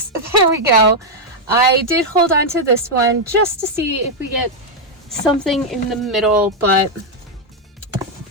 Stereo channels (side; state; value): both; normal; correlation 0.00